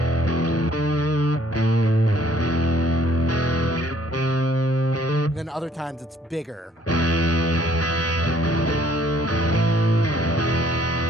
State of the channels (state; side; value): normal; both; correlation 0.61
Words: And then other times it's bigger.